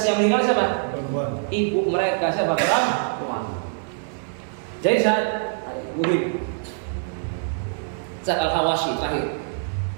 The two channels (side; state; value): left; silent; 63 dB below the other